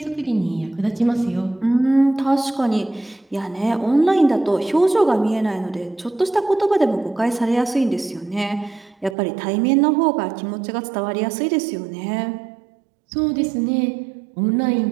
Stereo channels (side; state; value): left; drops out; at 9.2 s